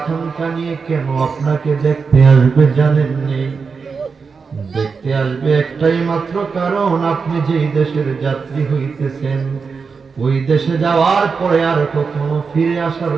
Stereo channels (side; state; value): left; quieter; 5.2 dB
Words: নিয়ে কেন আপনাকে দেখতে আসবে জানেননি দেখতে আসবে একটাই মাত্র কারণ আপনি যেই দেশের যাত্রী হইতেছেন ওই দেশে যাওয়ার পরে আর কখনো ফিরে আসার